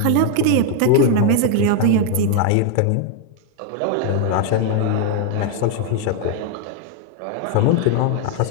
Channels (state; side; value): different; both; correlation 0.01